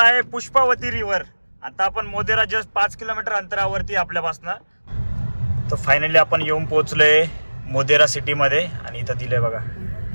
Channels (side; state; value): both; inverted; correlation -1.00